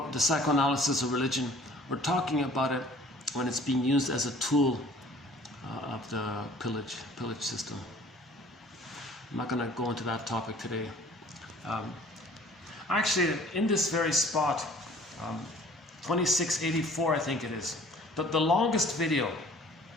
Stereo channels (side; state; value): both; normal; correlation 0.51